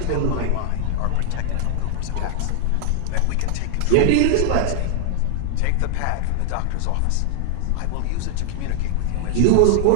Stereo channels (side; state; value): both; different; correlation 0.00